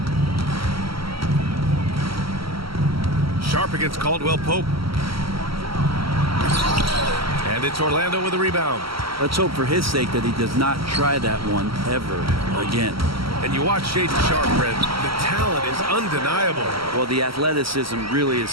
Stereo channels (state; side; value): late; left; 0.75 ms